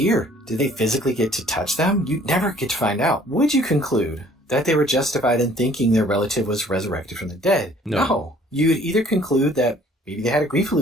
Did they physically get to touch them? You never get to find out. Would you conclude that they were justified in thinking their relative was resurrected from the dead? No. You would either conclude that maybe they had a grief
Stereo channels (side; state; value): both; normal; correlation 0.56